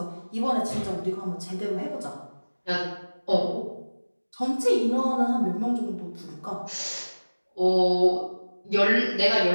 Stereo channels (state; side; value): inverted; both; correlation -1.00